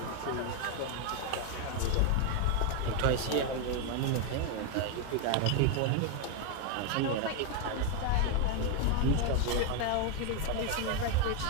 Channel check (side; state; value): both; different; correlation 0.01